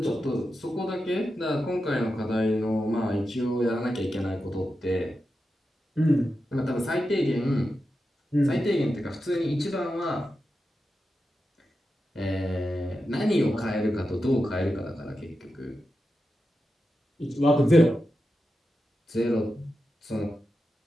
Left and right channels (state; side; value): normal; both; correlation 0.90